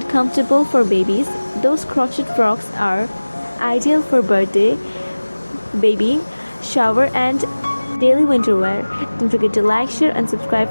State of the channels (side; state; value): both; inverted; correlation -1.00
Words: comfortable for babies. Those crochet frocks are ideal for birthday, baby shower, and daily winter wear. Don't forget to like, share, and subscribe